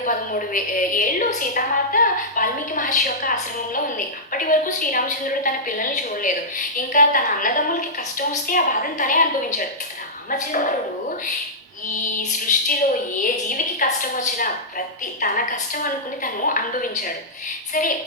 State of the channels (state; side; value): normal; both; correlation -0.13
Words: ఏళ్ళు సీతామాత వాల్మీకి మహర్షి యొక్క ఆశ్రమంలో ఉంది. అప్పటి వరకు శ్రీరామచంద్రుడు తన పిల్లల్ని చూడలేదు. ఇంకా తన అన్నదమ్ములకి కష్టం వస్తే ఆ బాధను తనే అనుభవించాడు. రామచంద్రుడు ఈ సృష్టిలో ఏ జీవికి కష్టం వచ్చినా తన కష్టం అనుకుని తను అనుభవించాడు. సరే,